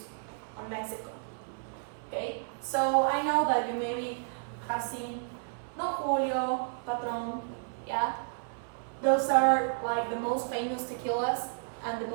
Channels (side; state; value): left; silent; 57 dB below the other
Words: on Mexico. Okay, so I know that you maybe have seen Don Julio, Patron, yeah? Those are like the most famous tequilas and the